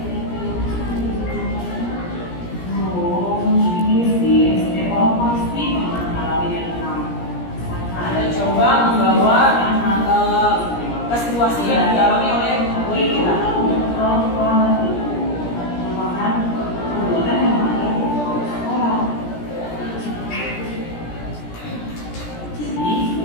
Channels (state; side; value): late; right; 17 ms